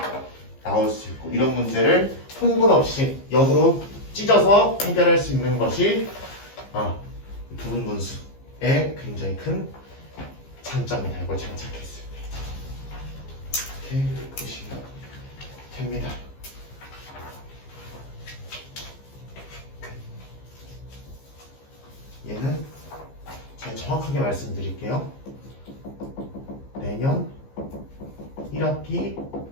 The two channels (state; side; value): late; right; 15 ms